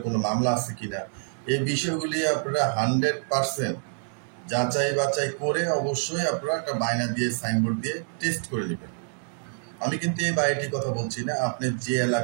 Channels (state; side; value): silent; left; 60 dB below the other